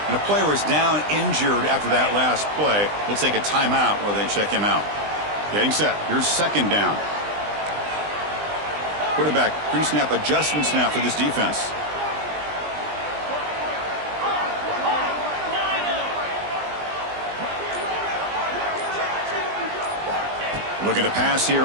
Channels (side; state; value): left; late; 20 ms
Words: And a player is down injured after that last play. We'll take a timeout while they check him out. Getting set. Here's 2nd down. Quarterback pre-snap adjustments now for this defense. Looking to pass here